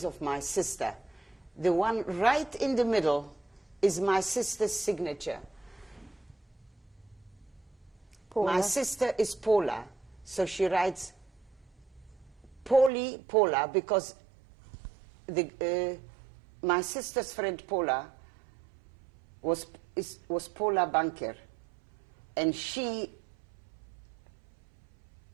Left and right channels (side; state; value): left; drops out; at 12.9 s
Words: of my sister. The one right in the middle is my sister's signature. Paula. My sister is Paula, so she writes Paula, because my sister's friend Paula was Paula Banker, and